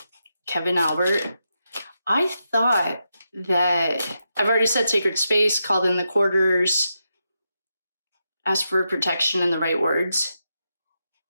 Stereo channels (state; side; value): inverted; both; correlation -0.85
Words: Kevin Albert. I thought that I've already said sacred space, called in the quarters, asked for protection and the right words.